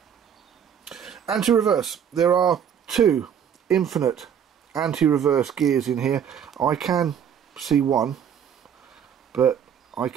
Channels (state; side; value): quieter; left; 8.4 dB